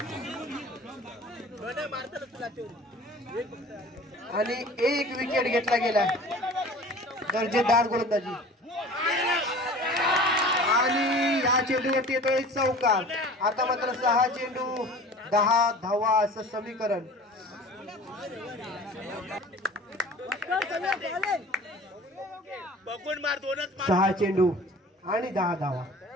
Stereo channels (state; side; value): normal; both; correlation 0.43